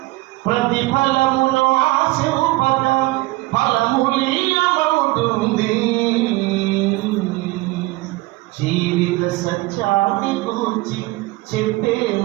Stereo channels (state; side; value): quieter; left; 20.6 dB